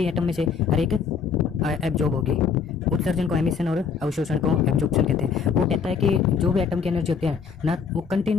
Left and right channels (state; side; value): quieter; right; 6.1 dB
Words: एटम में से और एक एब्जॉर्ब होगी। उत्सर्जन को एमिशन और अवशोषण को एब्जॉर्प्शन कहते हैं। वो कहता है कि जो भी एटम की एनर्जी होती है ना, वो